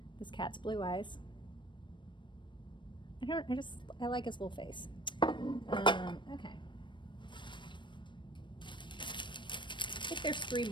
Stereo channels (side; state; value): right; late; 0.23 ms